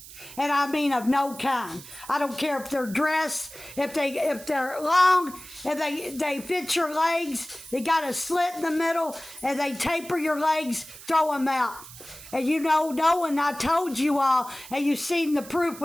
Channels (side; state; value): right; noise; hiss, 16 dB below the sound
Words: And I mean of no kind. I don't care if they're dress, if they're long, if they fit your legs, they got a slit in the middle, and they taper your legs, throw them out. And you know, knowing I told you all, and you've seen the proof